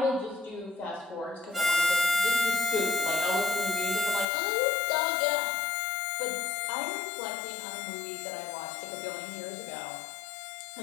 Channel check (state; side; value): drops out; right; at 4.2 s